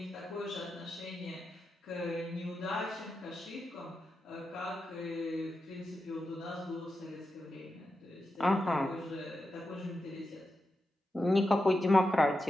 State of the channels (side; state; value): both; normal; correlation 0.89